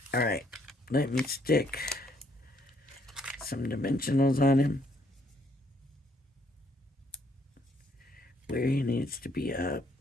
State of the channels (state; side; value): normal; both; correlation 0.68